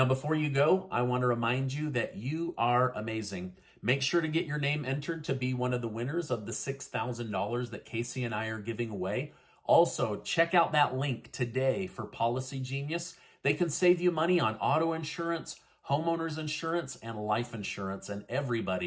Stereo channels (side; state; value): both; identical; correlation 1.00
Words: before you go, I want to remind you that you are amazing. Make sure to get your name entered to be one of the winners of the $6,000 that Casey and I are giving away. Also, check out that link today for Policy Genius. They can save you money on auto insurance, homeowners insurance, and life insurance, and